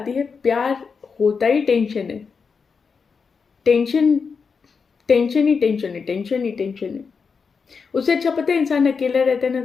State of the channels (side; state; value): right; quieter; 5.4 dB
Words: है प्यार होता ही टेंशन है। टेंशन, टेंशन ही टेंशन है, टेंशन ही टेंशन है। उससे अच्छा पता है इंसान अकेला रहता है ना